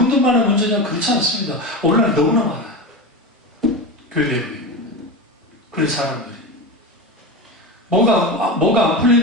문제냐? 그렇지 않습니다. 오늘날 너무나 많아요. 교회 내부에. 그런 사람들이. 뭐가 안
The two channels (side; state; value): both; normal; correlation 0.23